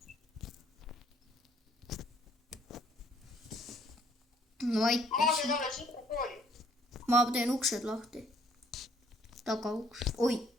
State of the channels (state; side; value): normal; both; correlation 0.62